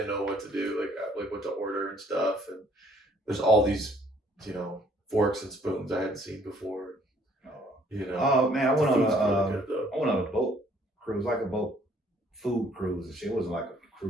know what to do, like what to order and stuff. And there's all these, you know, forks and spoons I hadn't seen before. You know. Oh man, I went on a boat cruise, like a boat food cruise and shit. It wasn't like a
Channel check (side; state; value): both; normal; correlation 0.62